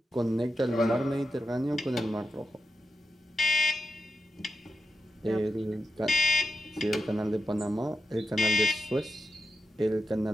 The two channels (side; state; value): both; normal; correlation 0.89